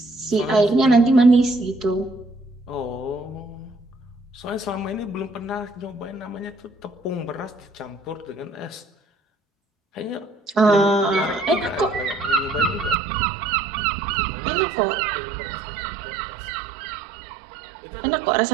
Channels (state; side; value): drops out; left; at 13.0 s